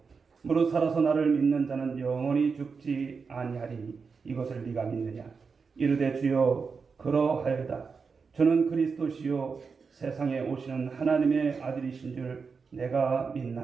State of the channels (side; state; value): left; quieter; 5.2 dB